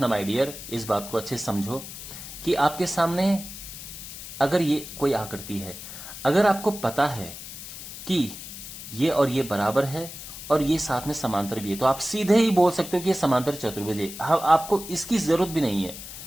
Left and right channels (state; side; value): noise; left; hiss, 11 dB below the sound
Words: माय डियर, इस बात को अच्छे से समझो कि आपके सामने अगर ये कोई आकृति है, अगर आपको पता है कि ये और ये बराबर है और ये साथ में समांतर भी है, तो आप सीधे ही बोल सकते हो कि ये समांतर चतुर्भुज है। आपको इसकी जरूरत भी नहीं है,